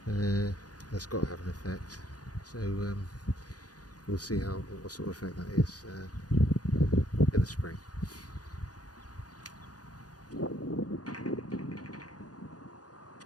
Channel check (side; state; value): right; late; 0.68 ms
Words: That's got to have an effect. So we'll see what sort of effect that is in the spring.